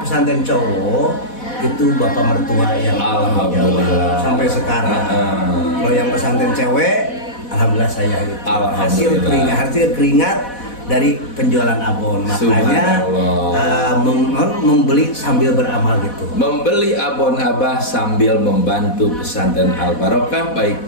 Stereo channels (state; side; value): late; right; 4.1 ms